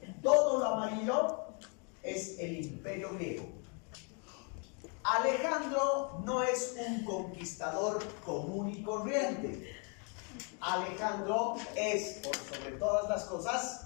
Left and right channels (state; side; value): quieter; right; 37.1 dB